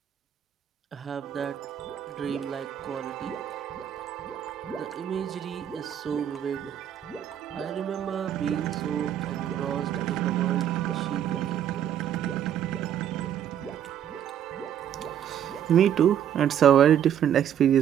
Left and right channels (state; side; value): quieter; left; 9.8 dB